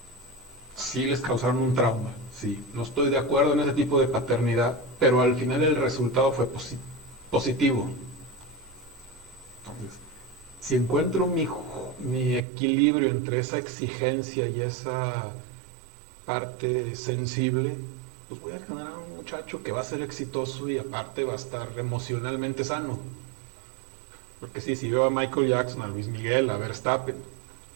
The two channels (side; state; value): left; drops out; at 12.4 s